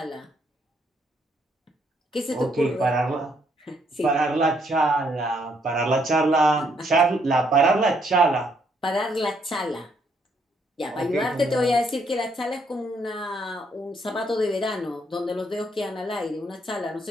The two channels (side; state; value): both; normal; correlation 0.71